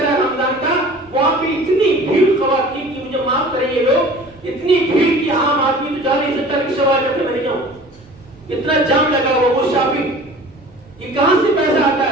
رمضان کا وہاں پہ اتنی بھیڑ خواتین کی, مجھے معاف کریں یہ لوگ, اتنی بھیڑ کی عام آدمی تو 40-70 رکشہ والے کہتے میں نہیں جاؤں, اتنا جام لگا ہوا وہ شاپنگ. یہ کہاں سے پیسہ آتا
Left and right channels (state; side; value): noise; right; rumble, 28 dB below the sound